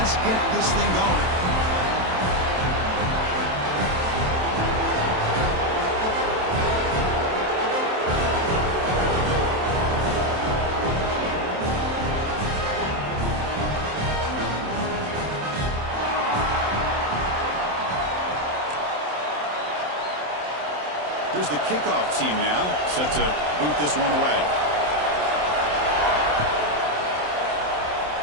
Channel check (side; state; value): left; late; 27 ms